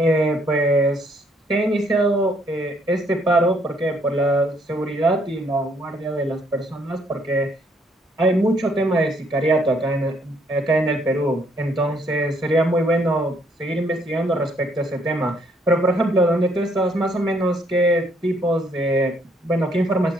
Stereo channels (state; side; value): normal; both; correlation 0.68